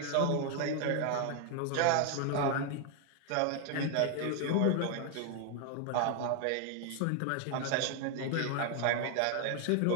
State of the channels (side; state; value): both; different; correlation 0.00